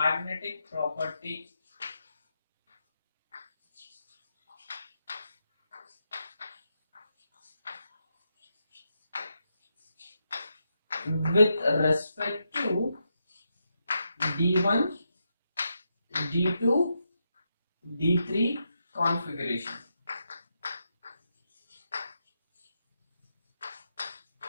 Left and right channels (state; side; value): inverted; both; correlation -0.84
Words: magnetic property with respect to D1, D2, D3 configuration.